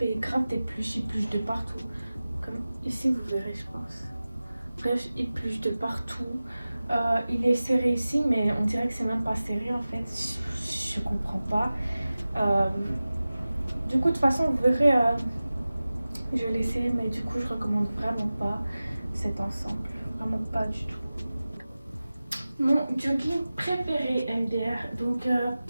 grave des pluches. Il pluche de partout. Comme ici, vous verrez, je pense. Bref, il pluche de partout. Il est serré ici, mais on dirait que c'est même pas serré en fait. Je comprends pas. Du coup, de toute façon, vous verrez, je l'ai essayé, mais du coup, je recommande vraiment pas cet ensemble. Vraiment pas du tout. Mon jogging préféré MDR. Donc,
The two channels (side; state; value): both; inverted; correlation -0.96